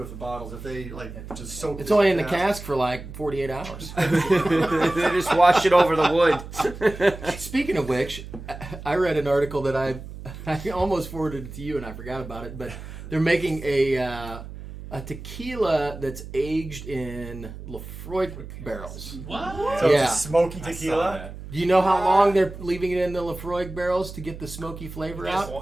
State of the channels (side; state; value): right; noise; hum, 12 dB below the sound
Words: the bottles. If they like just soak. It's only in the cask for like 48 hours. They just wash it over the wood. Speaking of which, I read an article that I almost forwarded it to you and I forgot about it, but they're making a tequila that's aged in Lefroy barrels. What? So Yeah. it's a smoky I saw tequila. that. Do you know how long they're leaving it in the Lefroy barrels to get the smoky flavor Just